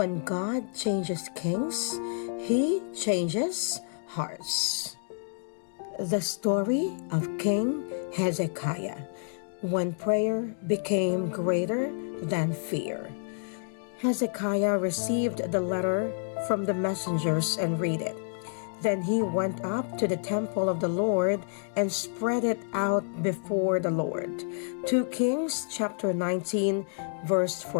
God changes kings, He changes hearts. The story of King Hezekiah, when prayer became greater than fear. Hezekiah received the letter from the messengers and read it. Then he went up to the temple of the Lord and spread it out before the Lord. 2 Kings chapter 19, verse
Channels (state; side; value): silent; right; digital silence